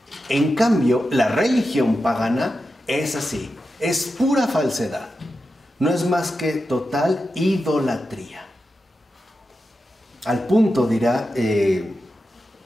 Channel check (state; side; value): normal; both; correlation 0.90